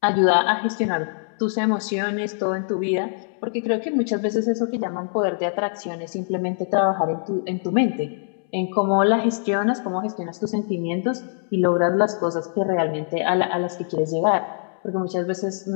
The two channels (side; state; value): right; silent; 63 dB below the other